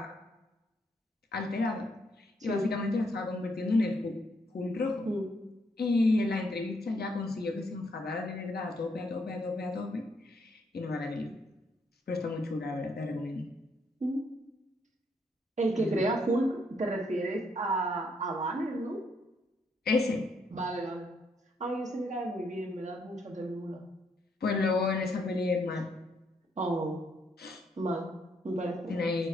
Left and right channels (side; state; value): both; normal; correlation 0.73